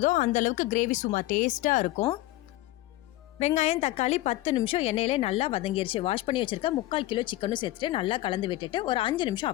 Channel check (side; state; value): right; quieter; 17.0 dB